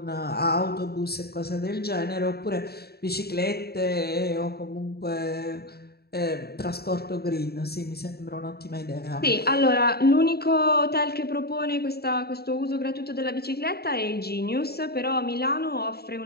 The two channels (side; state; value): right; late; 0.46 ms